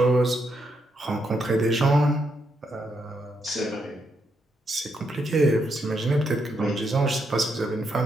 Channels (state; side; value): normal; both; correlation 0.79